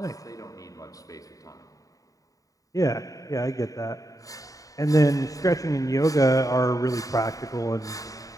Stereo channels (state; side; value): late; right; 0.16 ms